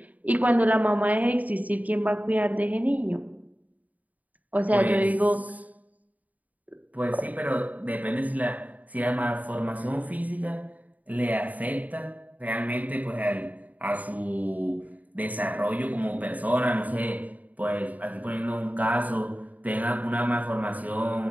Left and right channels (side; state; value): left; late; 0.075 ms